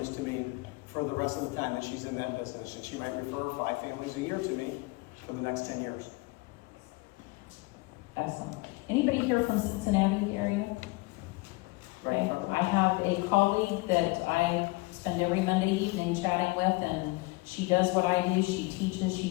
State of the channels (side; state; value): right; quieter; 23.7 dB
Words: to me for the rest of the time that she's in that business, and she might refer 5 families a year to me for the next 10 years. Excellent. Anybody here from Cincinnati area? Okay. I have a colleague that I spend every Monday evening chatting with, and she does what I do. She teaches,